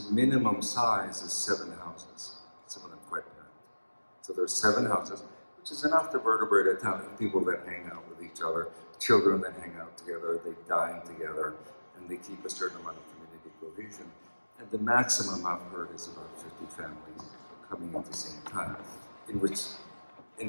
minimum size is 7 houses, some of them quite packed. So there's 7 houses, which is enough to vertebrate a town of people that hang out with each other, children that hang out together, they dine together, and they keep a certain amount of community cohesion. And the maximum I've heard is about 50 families coming at the same time,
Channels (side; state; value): both; inverted; correlation -1.00